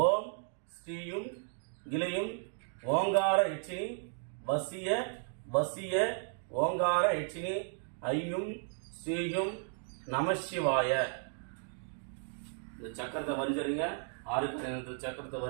ஓம் ஸ்ரீயும் கிளையும் ஓங்கார யட்சினி வசிய வசிய ஓங்கார யட்சினி ஐயும் ஸ்ரீயும் நமசிவாய. இந்த சக்கரத்தை வரைஞ்சிருங்க. 6 சக்கரத்தை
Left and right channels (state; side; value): silent; left; 55 dB below the other